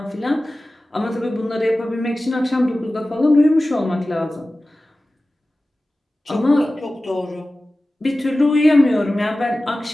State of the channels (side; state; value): both; normal; correlation 0.96